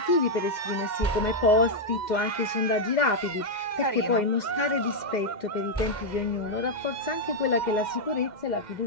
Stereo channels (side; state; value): right; late; 2.1 ms